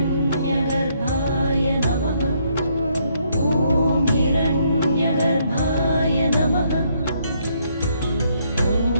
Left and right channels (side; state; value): both; inverted; correlation -0.71